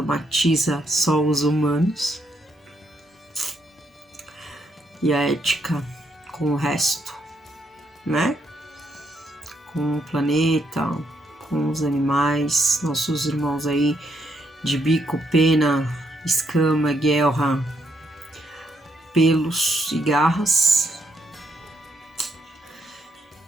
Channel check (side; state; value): both; normal; correlation 0.76